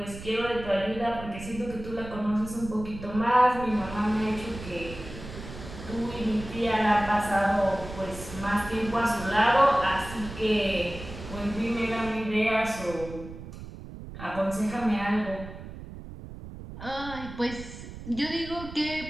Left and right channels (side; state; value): right; noise; rumble, 12 dB below the sound